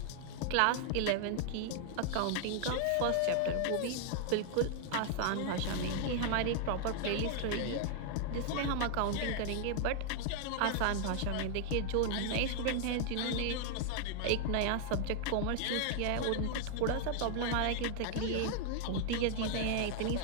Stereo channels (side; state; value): both; different; correlation 0.00